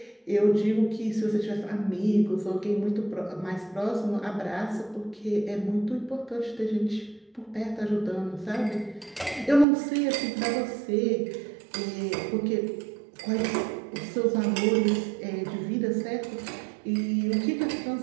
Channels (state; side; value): drops out; left; at 9.7 s